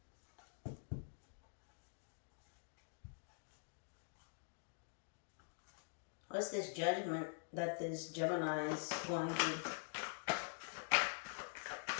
What's this judgment that this Gemini is going through?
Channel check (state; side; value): silent; right; digital silence